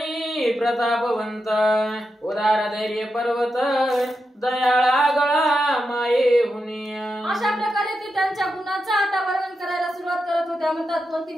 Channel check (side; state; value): both; normal; correlation 0.87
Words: प्रतापवंत उदार धैर्य पर्वत दयाळा गळा माये हुनी. अशा प्रकारे ते त्यांच्या गुणांचं आता वर्णन करायला सुरुवात करत होत्या. म्हणतात कोणती